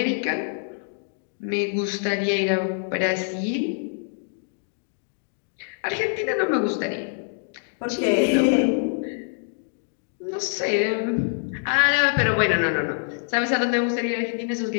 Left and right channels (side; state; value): right; silent; digital silence